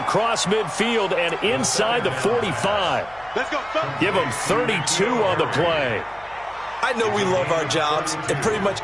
midfield and inside the 45. Give them 32 on the play. I know we love our jobs, and pretty much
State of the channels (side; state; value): left; noise; hum, 26 dB below the sound